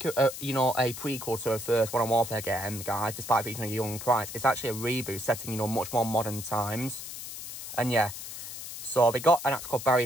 you know, a prequel to a first Modern Warfare game, guys, despite featuring a young Price. It's actually a reboot setting, you know, much more modern times. And yeah, so they got an actor called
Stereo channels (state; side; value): noise; left; hiss, 10 dB below the sound